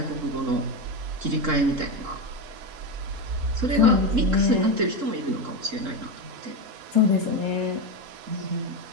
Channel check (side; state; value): left; late; 3.7 ms